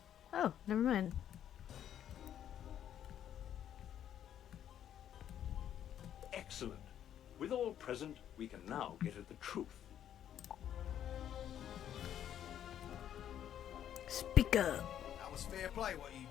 Oh, never mind. Excellent. With all present, we can now get at the truth. Speak up. That was fair play what you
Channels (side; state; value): right; quieter; 10.3 dB